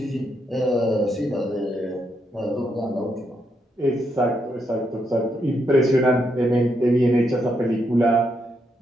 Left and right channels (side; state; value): both; normal; correlation 0.79